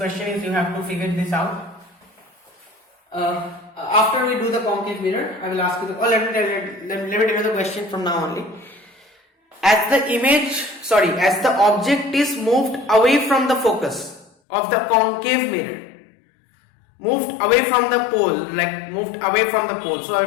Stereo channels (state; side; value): drops out; right; at 14.3 s